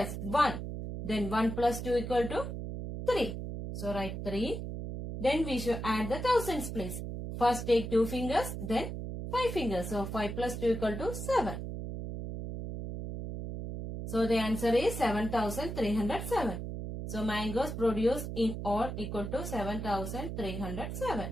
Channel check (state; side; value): noise; right; hum, 6 dB below the sound